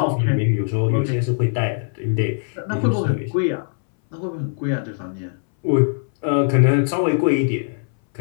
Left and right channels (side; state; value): right; silent; 62 dB below the other